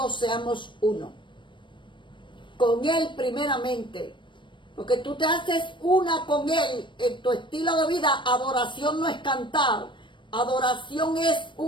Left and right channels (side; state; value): right; late; 0.23 ms